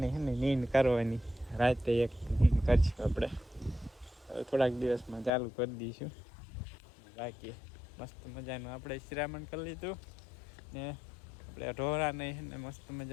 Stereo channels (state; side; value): drops out; right; at 5.3 s